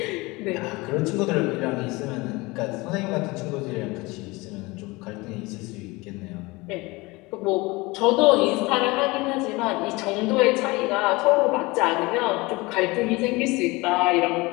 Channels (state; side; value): quieter; right; 23.3 dB